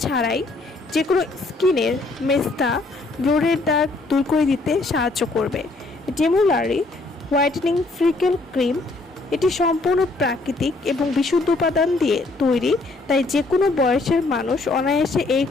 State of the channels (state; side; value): quieter; right; 3.2 dB